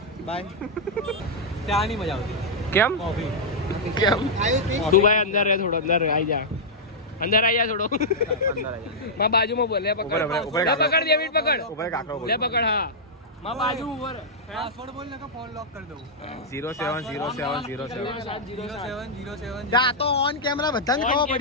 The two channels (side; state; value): both; normal; correlation -0.08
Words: બાય ત્યાં નહીં મજા આવતી કેમ કોફી કેમ આવ્યું તું ભાઈ અંદર રહે થોડો અંદર આવી જા અંદર આવી જા થોડો માં બાજુમાં બોલ લે પકડ લે પકડ ડેવિડ પકડ ઉપર કાકરો બોલ લે પકડ હા માં બાજુ ઉપર પાસવર્ડ બોલ ને કે ફોન લોક કરી દઉં 070707 જા તો ઓન કેમેરા બધાને ખબર